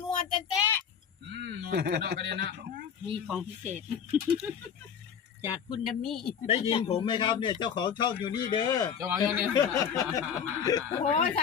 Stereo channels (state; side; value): quieter; right; 7.6 dB